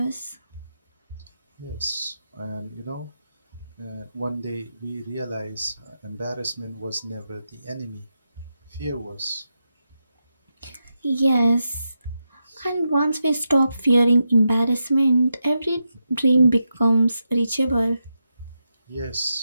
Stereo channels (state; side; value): inverted; both; correlation -0.87